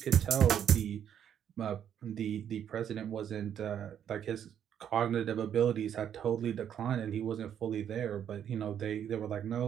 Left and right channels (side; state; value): left; quieter; 9.3 dB